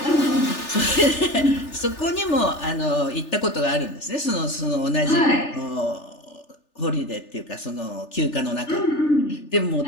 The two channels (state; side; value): late; right; 3.4 ms